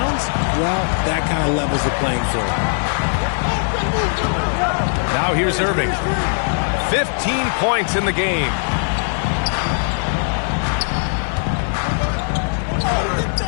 well, that kind of levels the playing field. Now here's Irving. 15 points in the game.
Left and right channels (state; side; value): silent; right; digital silence